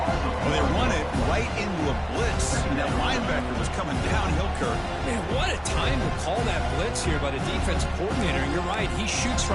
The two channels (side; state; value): both; identical; correlation 1.00